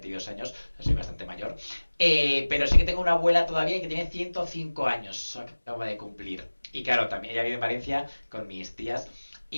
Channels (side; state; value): both; inverted; correlation -1.00